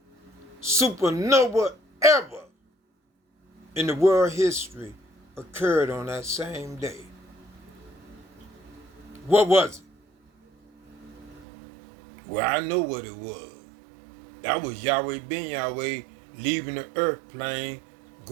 supernova ever in the world history occurred on that same day. What was it? Well, I know what it was. That was Yehuwdah-Ben-yahweh leaving the earth plane,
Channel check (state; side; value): drops out; left; at 11.5 s